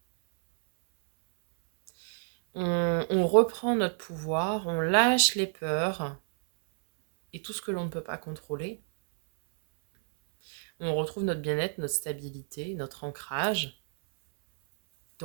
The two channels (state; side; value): silent; left; 59 dB below the other